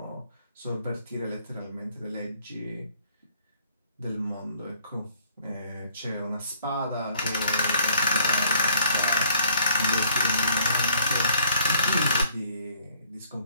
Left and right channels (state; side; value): inverted; both; correlation -0.62